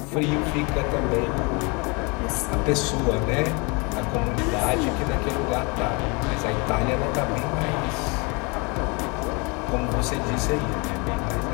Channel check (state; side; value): quieter; right; 29.8 dB